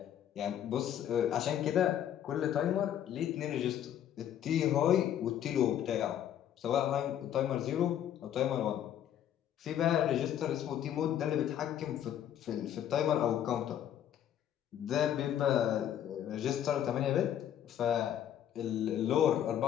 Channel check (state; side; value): quieter; right; 10.4 dB